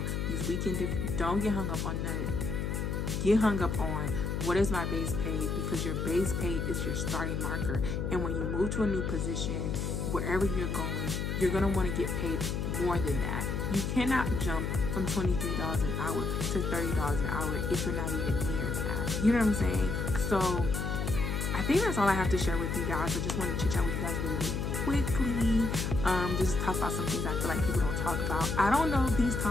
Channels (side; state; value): left; noise; hum, 1 dB below the sound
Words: these weekend don't get hung up on none. Get hung up on what is my base pay, because your base pay is your starting marker. And when you move to a new position, wherever you're going, you're going to want to get paid more than that. You cannot jump from $23 an hour to $30 an hour if you're not even near that. You know what I'm saying? So I think that's all I have to share with you guys. I just wanted to chit chat with you guys really, really quickly. Just talk about some things I feel like people don't talk about. I don't know if these